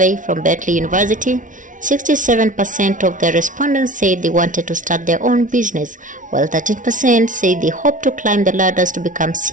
from Berkeley University, 67% of the respondents said they wanted to start their own business, while 13% said they hope to climb the ladders to become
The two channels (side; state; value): left; late; 0.38 ms